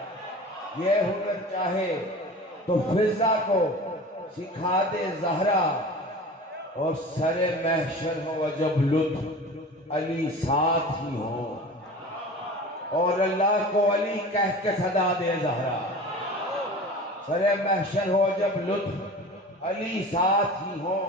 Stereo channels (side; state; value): both; normal; correlation 0.37